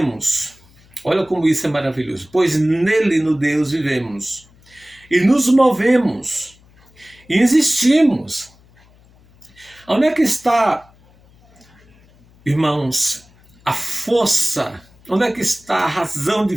Olha como isso é maravilhoso. Pois nele, no Deus, vivemos. E nos movemos. E existimos. Onde é que está, irmãos, a força? Onde é que está a razão de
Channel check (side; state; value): left; noise; hum, 29 dB below the sound